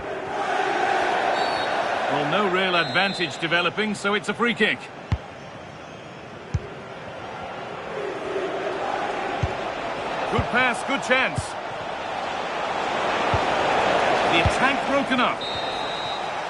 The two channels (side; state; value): both; identical; correlation 1.00